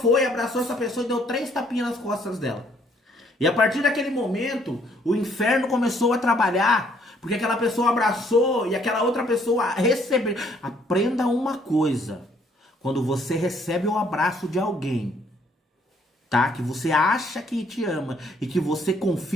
abraçou essa pessoa e deu 3 tapinhas nas costas dela. E a partir daquele momento, o inferno começou a trabalhar, porque aquela pessoa abraçou e aquela outra pessoa recebeu. Aprenda uma coisa: quando você recebe o abraço de alguém, tá? Que você acha que te ama e que você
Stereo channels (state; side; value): normal; both; correlation 0.65